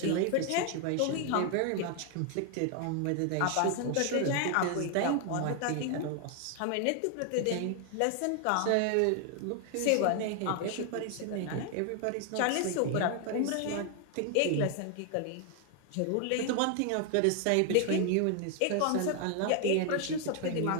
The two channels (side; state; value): both; different; correlation 0.00